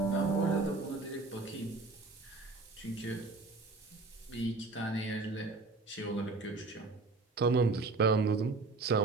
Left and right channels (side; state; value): left; quieter; 3.7 dB